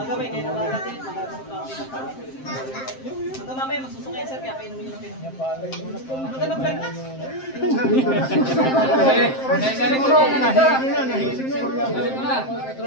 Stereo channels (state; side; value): late; right; 7.6 ms